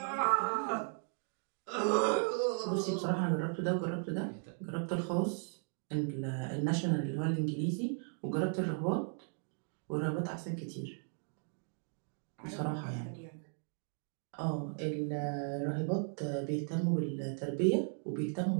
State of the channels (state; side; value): silent; left; 53 dB below the other